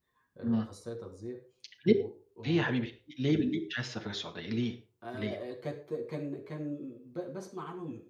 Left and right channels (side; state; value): both; identical; correlation 1.00